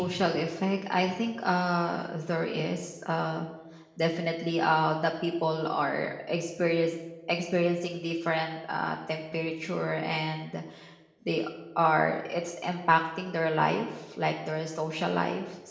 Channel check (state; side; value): identical; both; correlation 1.00